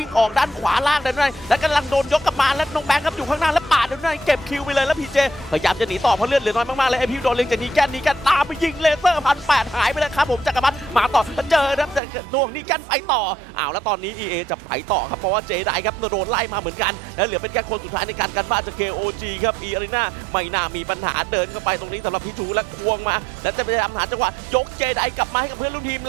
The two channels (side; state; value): left; drops out; at 12.0 s